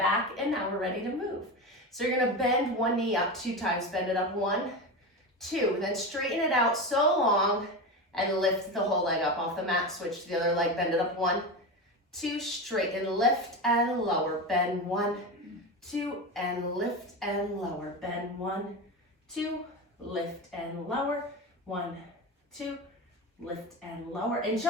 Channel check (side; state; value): both; normal; correlation 0.21